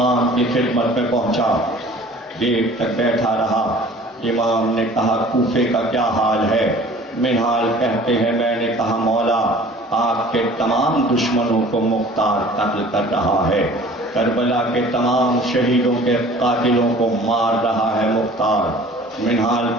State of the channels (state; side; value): normal; both; correlation 0.47